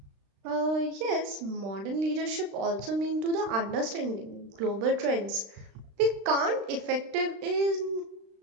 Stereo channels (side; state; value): left; late; 36 ms